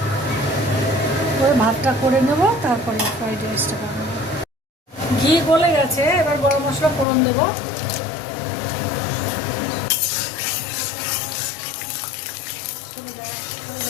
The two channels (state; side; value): drops out; right; at 7.1 s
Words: করে ভাতটা করে নেব, তারপরে ফ্রাইড রাইসটা বানাবো। ঘি গলে গেছে, এবার গরম মশলা ফোড়ন দেবো।